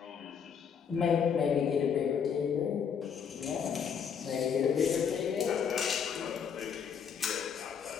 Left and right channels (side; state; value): right; quieter; 7.1 dB